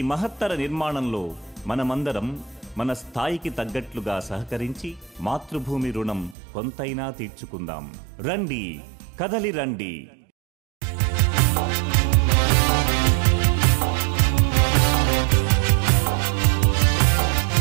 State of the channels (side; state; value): left; drops out; at 6.4 s